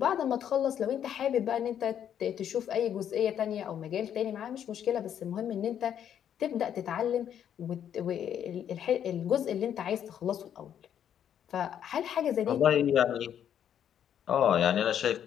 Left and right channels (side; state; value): right; quieter; 9.4 dB